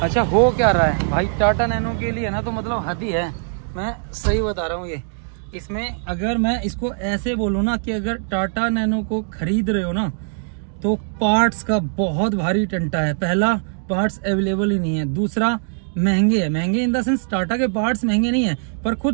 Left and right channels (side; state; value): left; silent; digital silence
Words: अच्छा हो क्या रहा है भाई, टाटा नैनो के लिए ना तो मतलब हद ही है, मैं सही बता रहा हूँ। ये इसमें अगर मैं इसको ऐसे बोलूँ ना कि अगर टाटा नैनो को खरीद रहे हो ना तो पार्ट्स का बहुत भारी टंटा है। पहला, पार्ट्स अवेलेबल ही नहीं है। दूसरा, महंगे है। महंगे इन द सेंस टाटा के पार्ट्स महंगे नहीं है, पर